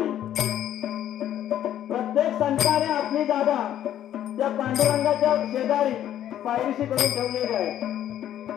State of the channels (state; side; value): quieter; right; 11.3 dB